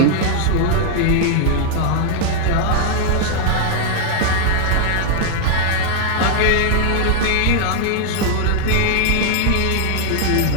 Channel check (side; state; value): both; different; correlation 0.00